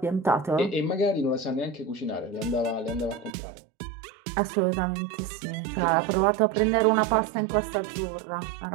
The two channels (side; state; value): left; drops out; at 3.3 s